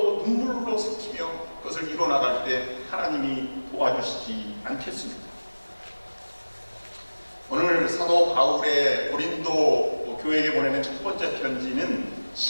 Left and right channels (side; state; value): both; inverted; correlation -1.00